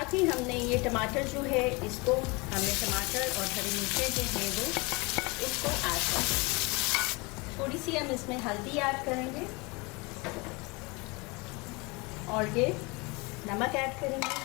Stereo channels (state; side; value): quieter; right; 26.9 dB